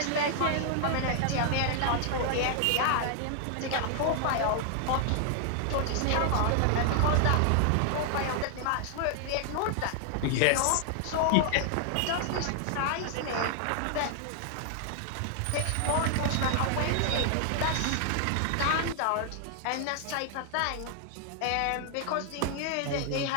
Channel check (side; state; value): both; different; correlation 0.00